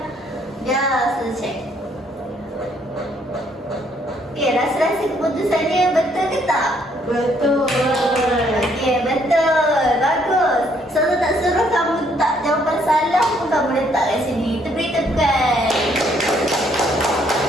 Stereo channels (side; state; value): both; normal; correlation 0.68